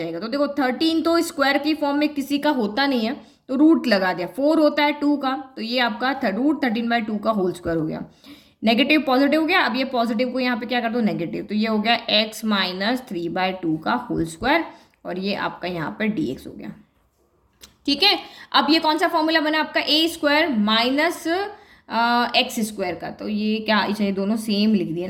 तो देखो 13 तो स्क्वायर की फॉर्म में किसी का होता नहीं है, तो रूट लगा दिया। 4 होता है 2 का, तो ये आपका √13/2 का होल स्क्वायर हो गया। नेगेटिव पॉजिटिव हो गया, अब ये पॉजिटिव को यहाँ पे क्या कर दो, नेगेटिव। तो ये हो गया x माइनस 3/2 का होल स्क्वायर और ये आपका यहाँ पर dx हो गया, ठीक है। अब ये कौन सा फॉर्मूला बना आपका, a square minus x square का। तो ये क्या, ये दोनों सेम लिख दिया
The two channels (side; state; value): both; identical; correlation 1.00